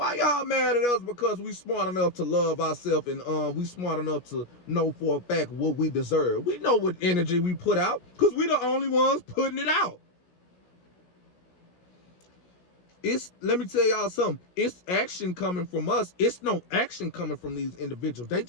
y'all mad at us because we smart enough to love ourselves and we smart enough to know for a fact what we deserve? We know what energy we put out because we the only ones putting it out. Let me tell y'all something. It's action coming from us. It's no action coming from these individuals. They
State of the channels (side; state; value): right; late; 17 ms